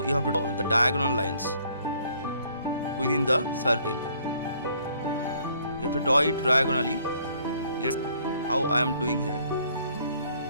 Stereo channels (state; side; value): inverted; both; correlation -0.63